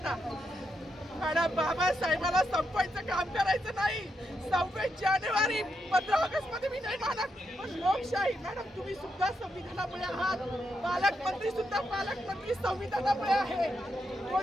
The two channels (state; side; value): normal; both; correlation 0.82